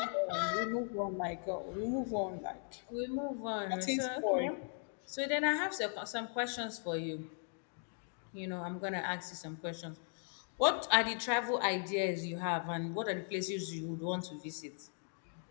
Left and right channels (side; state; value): right; silent; 52 dB below the other